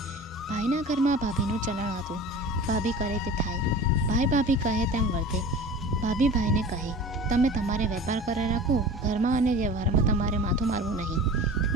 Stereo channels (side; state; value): both; normal; correlation 0.38